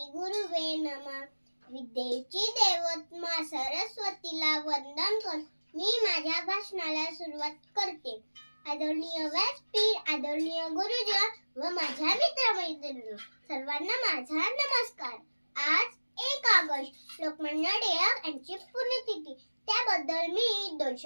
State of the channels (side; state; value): both; inverted; correlation -1.00